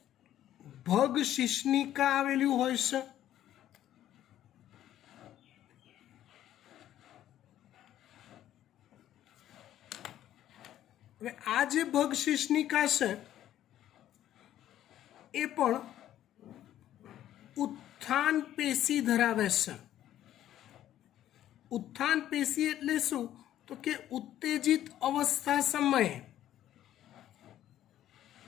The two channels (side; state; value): right; quieter; 12.2 dB